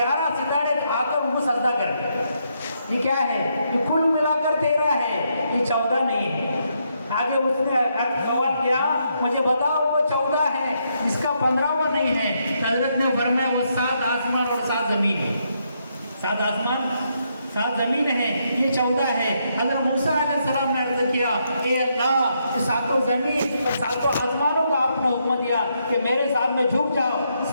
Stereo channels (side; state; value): both; inverted; correlation -0.78